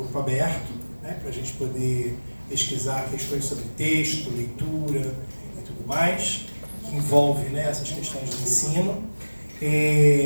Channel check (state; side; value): inverted; both; correlation -1.00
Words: aberto, para a gente poder pesquisar questões sobre texto, leitura e tudo mais, que envolve essas questões de ensino.